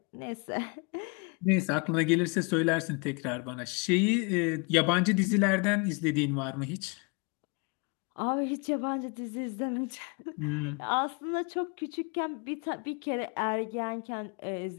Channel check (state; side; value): quieter; right; 32.6 dB